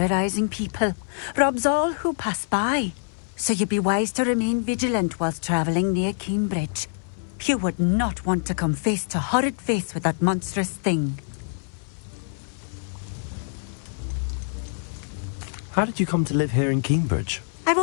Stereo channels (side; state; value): right; silent; 62 dB below the other